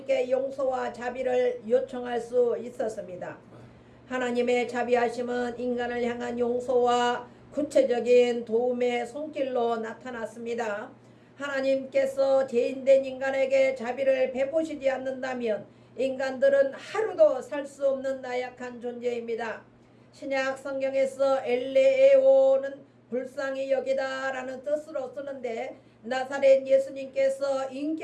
용서와 자비를 요청할 수 있었습니다. 하나님의 자비하심은 인간을 향한 용서와 구체적인 도움의 손길로 나타났습니다. 하나님께서 죄인된 인간에게 자비를 베푸시지 않는다면 인간들은 하루도 살 수 없는 나약한 존재입니다. 신약 성경에서 엘레오는 불쌍히 여기다라는 뜻으로 쓰는데 나사렛 예수님께서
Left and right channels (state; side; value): identical; both; correlation 1.00